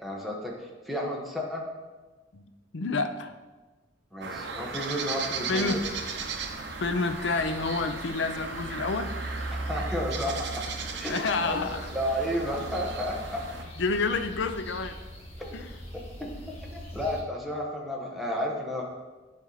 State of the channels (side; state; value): both; normal; correlation 0.21